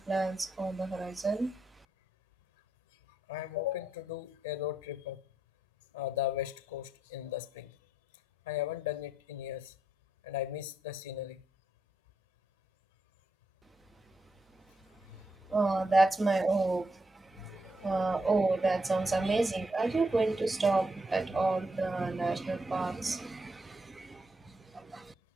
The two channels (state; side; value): normal; both; correlation 0.80